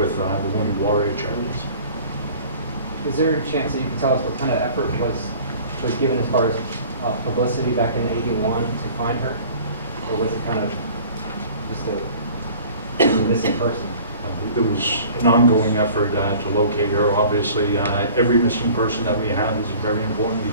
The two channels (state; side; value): inverted; both; correlation -0.47